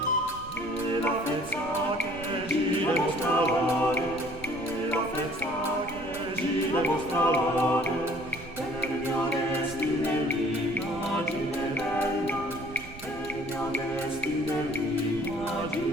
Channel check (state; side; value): noise; right; rumble, 16 dB below the sound